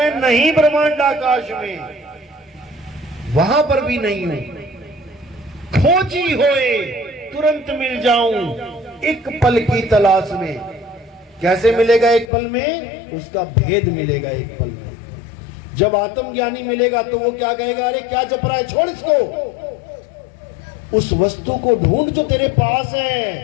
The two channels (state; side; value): drops out; right; at 12.3 s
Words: नहीं ब्रह्मांड आकाश में, वहां पर भी नहीं हूं। खोजी होए तुरंत मिल जाऊं, एक पल की तलाश में। कैसे मिलेगा एक पल में? उसका भेद मिलेगा एक पल में। जब आत्मज्ञानी मिलेगा तो वो क्या कहेगा? अरे क्या जप रहा है, छोड़ इसको, उस वस्तु को ढूंढ जो तेरे पास